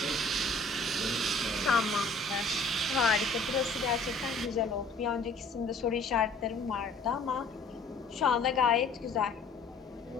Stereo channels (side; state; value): right; quieter; 3.3 dB